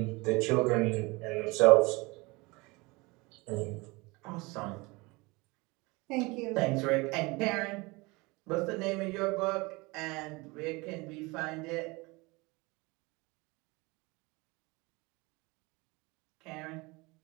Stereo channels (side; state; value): left; quieter; 24.8 dB